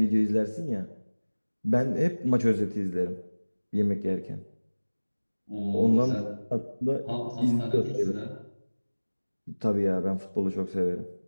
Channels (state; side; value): inverted; both; correlation -1.00